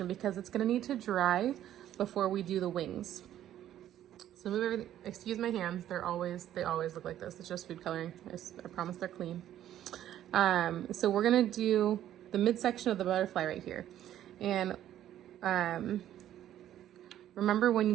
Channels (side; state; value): left; quieter; 11.8 dB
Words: because it's gonna need to dry before we do the wings. So move everything, excuse my hands, they always look like this. It's just food coloring, I promise they're clean. So we're gonna do the midsection of the butterfly right here. And remember,